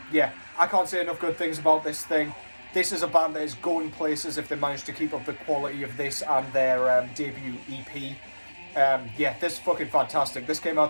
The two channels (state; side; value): inverted; both; correlation -1.00